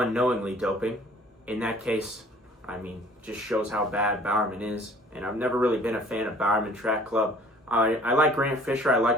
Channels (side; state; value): both; normal; correlation 0.53